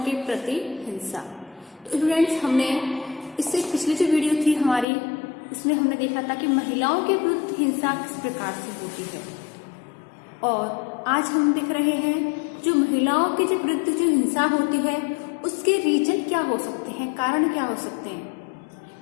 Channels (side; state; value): right; drops out; at 4.9 s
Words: प्रति हिंसा। तो फ्रेंड्स, हमने इससे पिछली जो वीडियो थी हमारी, उसमें हमने देखा था कि महिलाओं के विरुद्ध हिंसा किस प्रकार से होती है, और आज हम देख रहे हैं जो महिलाओं के जो विरुद्ध जो हिंसा होती है उसके रीजन क्या हो सकते हैं, कारण क्या हो सकते हैं,